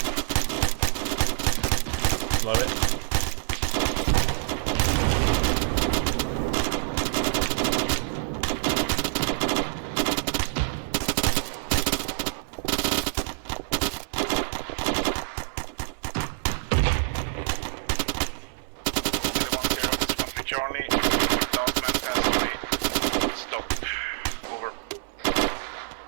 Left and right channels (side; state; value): left; silent; digital silence